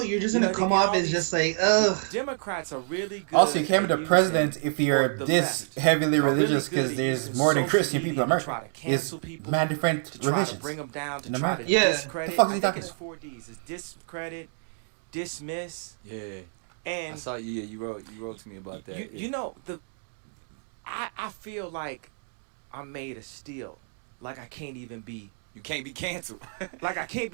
you're just gonna come off as just like, ugh. Democrats are really good. Also, you can't be the president if you're this heavily religious, because there's more than Christian people in America. There's mad different religions in America. Yeah. The fuck is he talking about? 4 Ds. It's discredit, dismiss. Yeah. And I saw you. Yeah, you wrote to me about that. You know I feel like I'm made of steel. Like I can't even be. You can't be canceled. Like I can't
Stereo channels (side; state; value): left; silent; 59 dB below the other